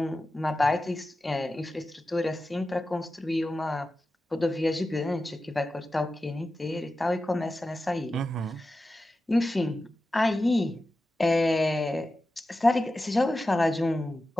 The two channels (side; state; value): both; normal; correlation 0.93